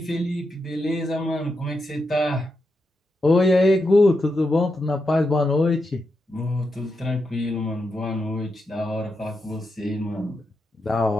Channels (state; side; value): normal; both; correlation 0.86